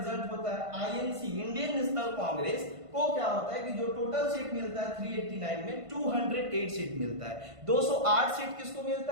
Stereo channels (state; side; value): late; left; 1.5 ms